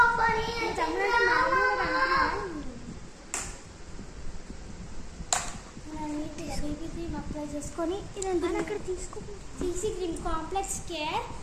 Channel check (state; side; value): identical; both; correlation 1.00